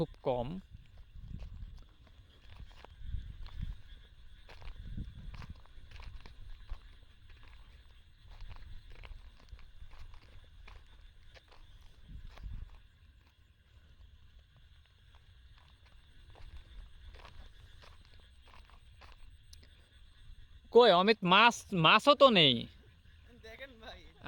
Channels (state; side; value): identical; both; correlation 1.00